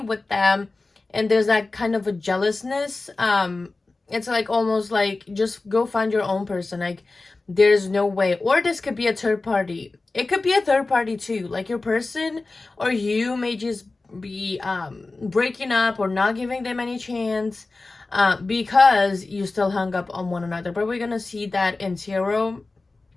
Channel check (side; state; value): right; quieter; 3.4 dB